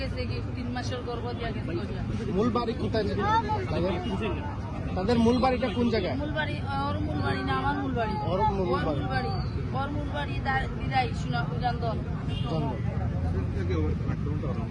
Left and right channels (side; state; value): both; identical; correlation 1.00